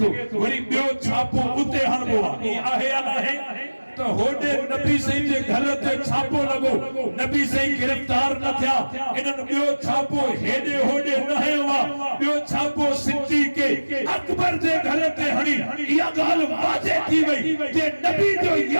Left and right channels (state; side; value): inverted; both; correlation -1.00